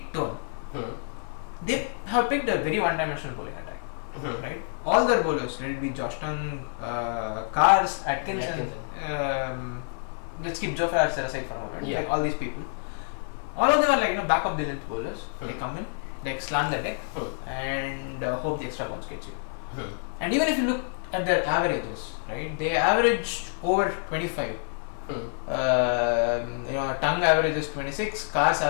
tone. they have picked a very one-dimensional bowling attack, right? All their bowlers, let it be Josh Tongue, Cars, Atkinson. Let's keep Joe Farrar aside for a moment. Like all these people, all of them are like back of the length bowlers. They come in, like slant the deck, and hope the extra bounce gets you. And even if you look at their averages, right? They averaged over 25. Tongue averages 26, Cars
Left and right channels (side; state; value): right; silent; digital silence